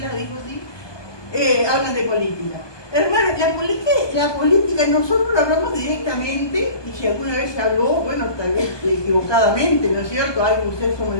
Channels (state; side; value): late; right; 1.2 ms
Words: dijo sí, hablan de política. Hermano, la política nosotros lo hablamos directamente, y si alguna vez se habló, bueno, tal vez equivocadamente, ¿no es cierto? Algo usted hizo